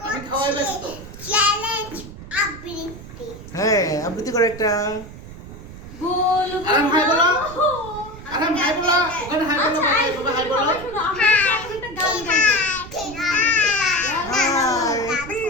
আমি খাওয়াই ব্যস্ত। চ্যালেঞ্জ আবৃত্তি। হ্যাঁ, আবৃত্তি করে একটা। বলবো আরাম হাই বলো। আরাম হাই বলো। ওখানে হাই বলো, আচ্ছা, বাবা হাই বলো। সবাই শোনো, আমরা এখন একটা গান গাইবো। হাই।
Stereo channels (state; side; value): noise; right; rumble, 14 dB below the sound